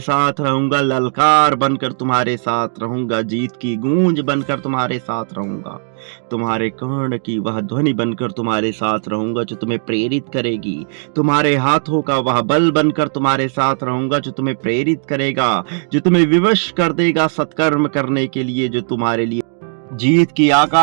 रहूंगा। ललकार बनकर तुम्हारे साथ रहूंगा, जीत की गूंज बनकर तुम्हारे साथ रहूंगा, तुम्हारे कर्ण की वह ध्वनि बनकर तुम्हारे साथ रहूंगा जो तुम्हें प्रेरित करेगी। तुम्हारे हाथों का वह बल बनकर तुम्हारे साथ रहूंगा जो तुम्हें प्रेरित करेगा, जो तुम्हें विवश कर देगा सत्कर्म करने के लिए, जो तुम्हारे लिए जीत की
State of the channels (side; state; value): left; silent; digital silence